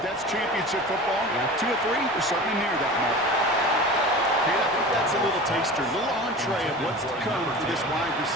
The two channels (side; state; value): both; normal; correlation 0.35